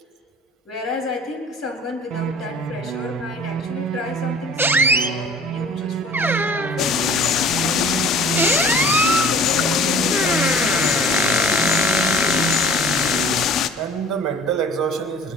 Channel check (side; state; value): both; normal; correlation 0.46